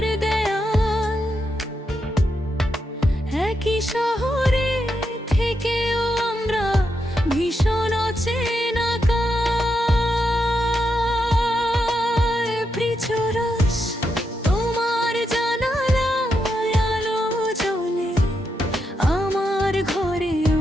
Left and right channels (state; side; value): normal; both; correlation 0.83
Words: দেয়াল, একই শহরে থেকেও আমরা ভীষণ অচেনা কাল। প্রিচরস তোমার জানালায় আলো জ্বলে, আমার ঘরে